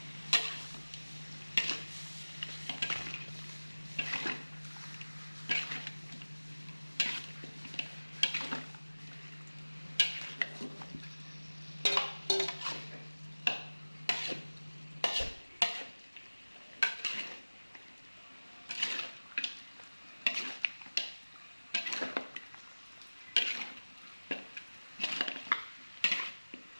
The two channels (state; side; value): inverted; both; correlation -1.00